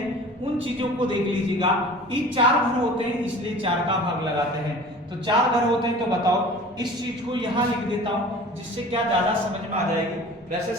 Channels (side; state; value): both; normal; correlation 0.42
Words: उन चीजों को देख लीजिएगा। ये 4 घर होते हैं इसलिए 4 का भाग लगाते हैं। तो 4 घर होते हैं, तो बताओ इस चीज को यहाँ लिख देता हूं जिससे क्या ज्यादा समझ में आ जाएगी। वैसे